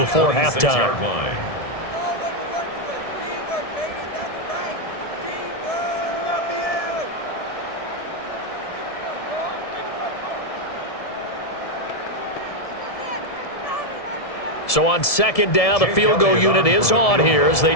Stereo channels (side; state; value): right; late; 1.7 ms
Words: halftime. So on 2nd down, the field goal unit is on here as they